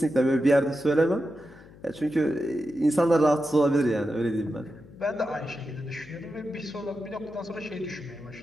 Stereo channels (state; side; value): noise; left; hum, 21 dB below the sound